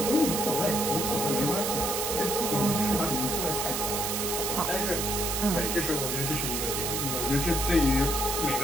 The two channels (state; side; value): noise; right; hiss, 1 dB below the sound